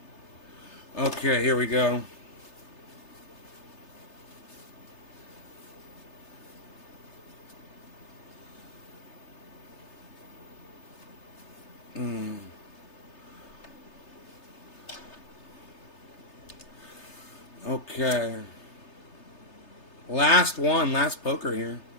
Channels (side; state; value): right; late; 3.3 ms